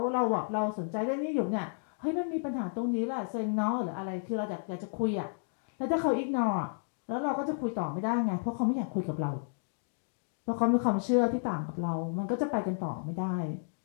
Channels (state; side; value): silent; right; digital silence